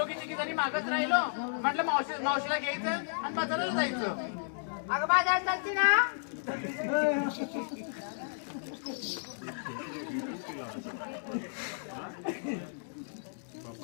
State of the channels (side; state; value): right; silent; digital silence